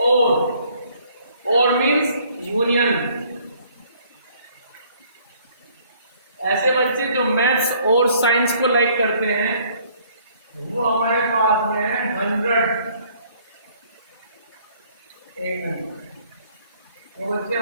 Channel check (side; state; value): both; inverted; correlation -0.61